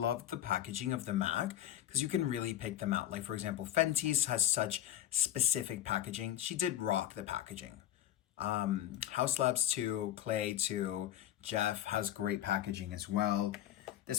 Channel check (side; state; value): right; quieter; 12.4 dB